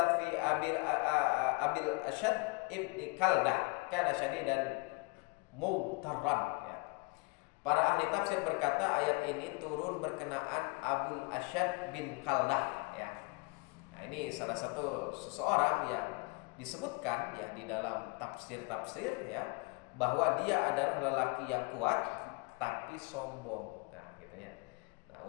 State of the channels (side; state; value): right; quieter; 28.6 dB